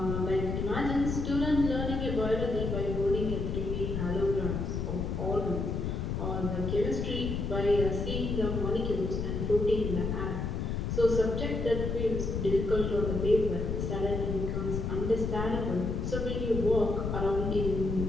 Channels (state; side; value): noise; left; rumble, 2 dB below the sound